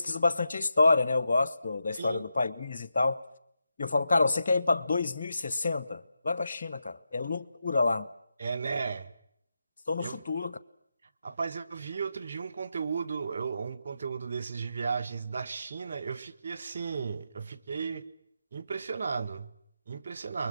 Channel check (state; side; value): inverted; both; correlation -0.86